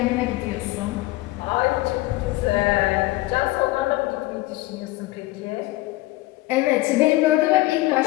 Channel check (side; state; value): right; quieter; 19.4 dB